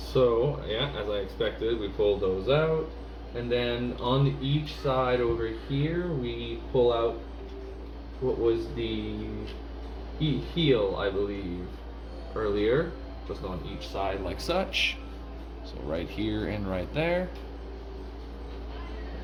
yeah, as I expected, we pulled those out. And then on each side over here, we pull out what was the heel, I believe, earlier. Just on each side like such. So right here and right there.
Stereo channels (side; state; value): both; identical; correlation 1.00